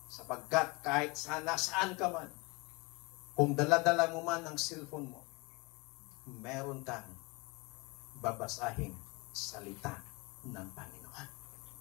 Sapagkat kahit saan ka man, kung dala-dala mo man ang cellphone mo, meron kang babasahing salita ng Panginoon.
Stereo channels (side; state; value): right; quieter; 26.7 dB